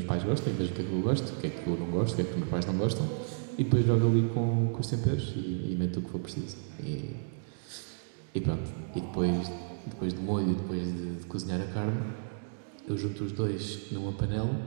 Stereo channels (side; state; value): left; silent; digital silence